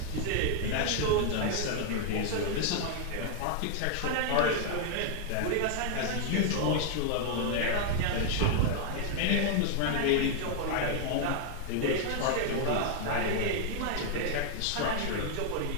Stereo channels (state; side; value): different; both; correlation 0.00